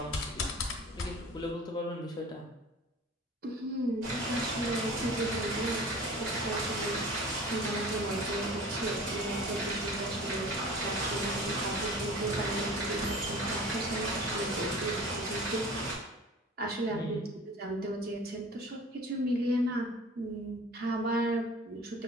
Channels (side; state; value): both; normal; correlation 0.42